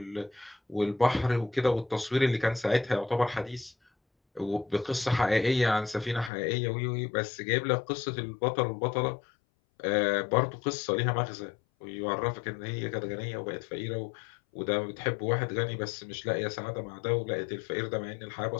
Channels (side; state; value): right; drops out; at 6.3 s